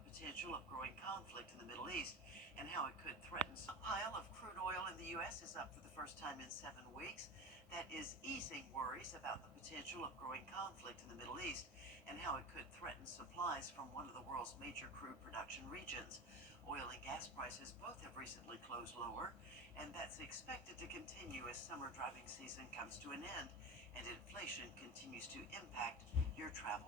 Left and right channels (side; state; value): both; normal; correlation 0.27